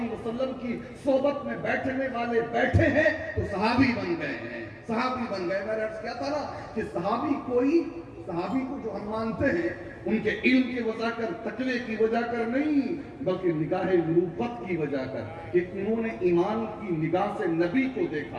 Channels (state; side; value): identical; both; correlation 1.00